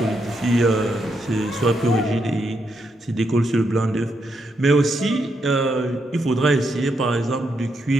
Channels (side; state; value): both; normal; correlation 0.80